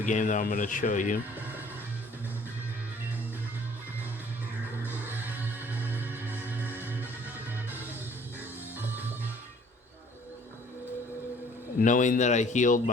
game that I'm going to show you. Knowing that I healed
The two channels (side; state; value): both; normal; correlation 0.56